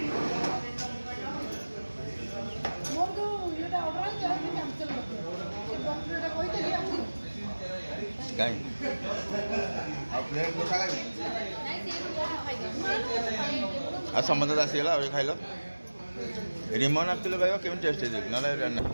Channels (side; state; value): both; inverted; correlation -1.00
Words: आ समुद्र आसीगला खाइल रिमन आसुल भाई केमी टेस्ट ना